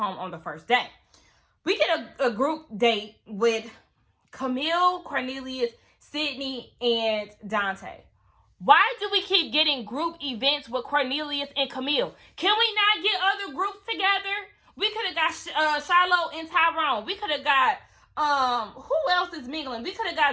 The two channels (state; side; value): identical; both; correlation 1.00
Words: on the first day. We get a group date with Camille, Cornelius, Sydney, and Dante. Why do we keep getting group events with Cornelius and Camille? Can we not get other groups together? We could have got Shiloh and Tyrone. We could have got, who else is mingling? We could have